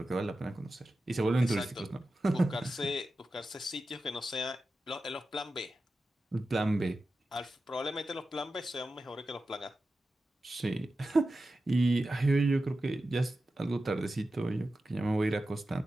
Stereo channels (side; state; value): both; normal; correlation 0.92